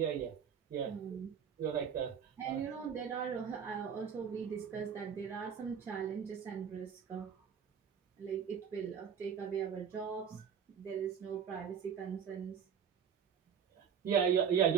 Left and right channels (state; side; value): quieter; left; 7.5 dB